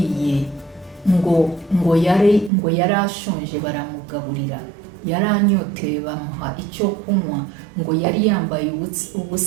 ngo yari ashonje baramugaburira, yari anyoteye bamuha icyo kunywa, ngo yari yambaye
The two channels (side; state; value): left; drops out; at 2.5 s